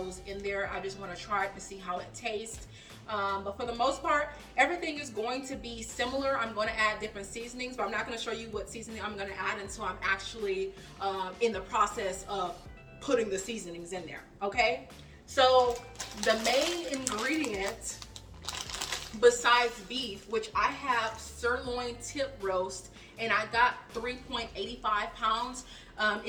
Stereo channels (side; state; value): both; identical; correlation 1.00